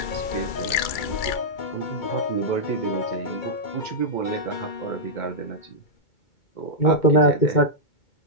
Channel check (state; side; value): late; right; 2.3 ms